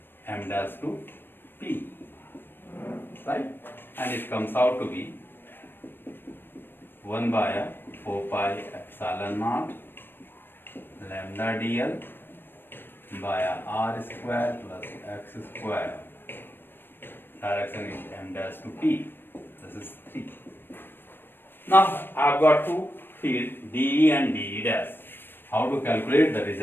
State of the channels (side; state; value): right; late; 0.097 ms